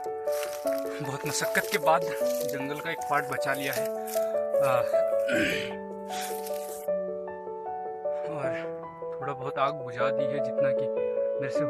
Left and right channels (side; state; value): both; identical; correlation 1.00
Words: मशक्कत के बाद जंगल का एक पार्ट बचा लिया है और थोड़ा बहुत आग बुझा दी है जितना कि मेरे से